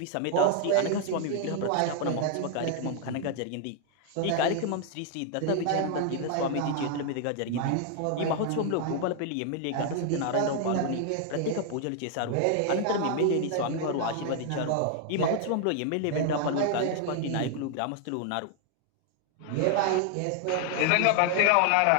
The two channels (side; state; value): both; different; correlation 0.00